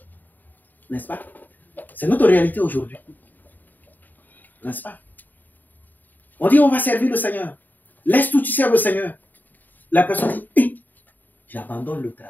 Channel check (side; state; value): right; late; 0.087 ms